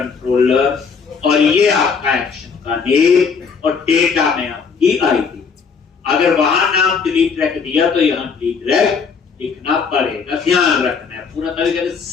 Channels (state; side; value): quieter; right; 5.6 dB